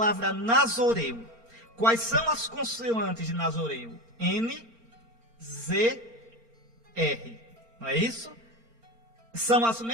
Nazoreu. Quais são as consoantes de Nazoreu? N, Z, R. Não é isso? São as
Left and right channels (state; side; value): late; left; 4.4 ms